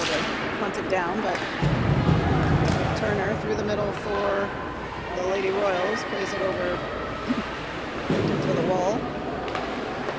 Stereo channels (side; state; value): both; identical; correlation 1.00